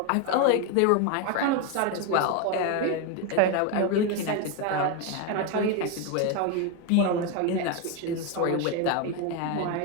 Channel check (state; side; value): different; both; correlation 0.02